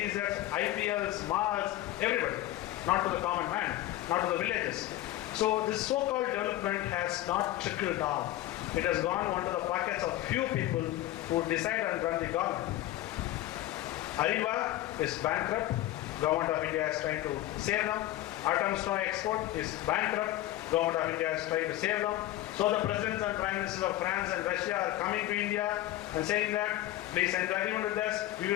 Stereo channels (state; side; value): quieter; right; 15.2 dB